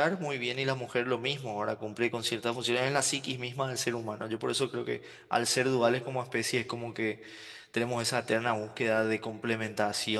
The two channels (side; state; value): both; identical; correlation 1.00